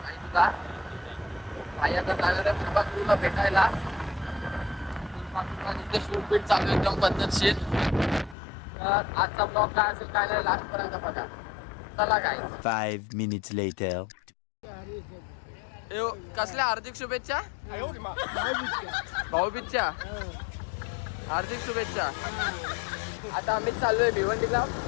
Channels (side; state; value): right; drops out; at 8.3 s